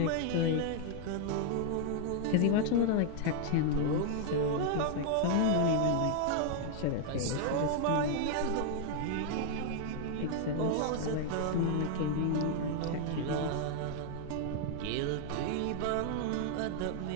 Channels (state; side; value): different; both; correlation 0.00